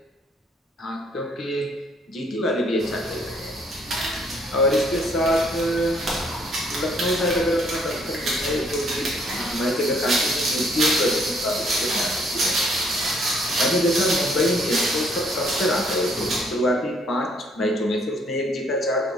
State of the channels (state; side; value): normal; both; correlation 0.66